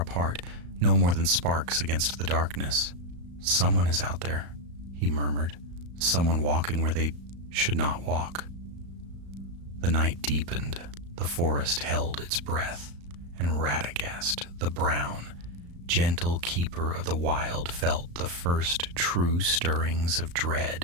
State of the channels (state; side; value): late; left; 35 ms